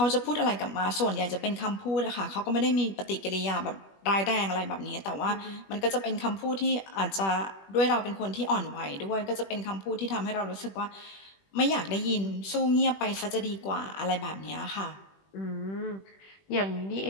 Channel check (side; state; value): right; late; 21 ms